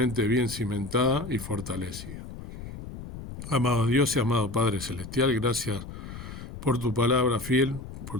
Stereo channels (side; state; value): left; noise; rumble, 11 dB below the sound